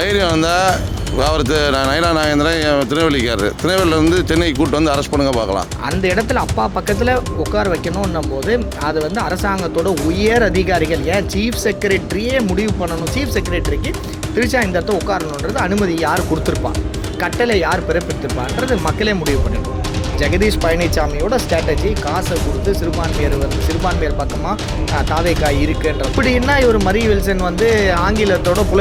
இருந்தால் அவர் நயனா நாகேந்திரன் திருநெல்வேலிக்காரர், திருநெல்வேலியிலேருந்து சென்னைக்கு கூப்பிட்டு வந்து அரெஸ்ட் பண்ணுங்க பார்க்கலாம். அந்த இடத்துல அப்பா பக்கத்தில் உட்கார வைக்கணும்னும் போது அது வந்து அரசாங்கத்தோட உயர் அதிகாரிகள், ஏன் சீஃப் செக்ரட்டரியே முடிவு பண்ணணும். சீஃப் செக்ரட்டரிக்கு திரிஷா இந்த இடத்த உட்காரணுன்றது அனுமதி யார் கொடுத்துருப்பா, கட்டளை யார் பிறப்பித்திருப்பான்றது மக்களே முடிவு பண்ணிடுவோம். ஜெகதீஷ் பழனிசாமியோட ஸ்ட்ராட்டஜி காசை கொடுத்து சிறுபான்மையர் பக்கமாக தாவேக்காய் இருக்குன்ற இப்படின்னா இவர் மரி வில்சன் வந்து ஆங்கிலத்தோட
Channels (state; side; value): identical; both; correlation 1.00